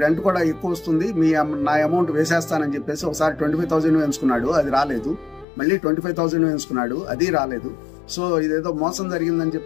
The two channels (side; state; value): right; drops out; at 5.5 s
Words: రెంట్ కూడా ఎక్కువ వస్తుంది, నా అమౌంట్ వేసేస్తానని చెప్పేసి ఒకసారి 25,000 వేయించుకున్నాడు, అది రాలేదు. మళ్ళీ 25,000 వేయించుకున్నాడు, అది రాలేదు. సో ఇదేదో మోసం జరిగిందని